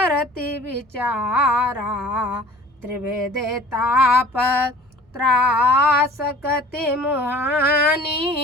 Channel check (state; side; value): normal; both; correlation 0.47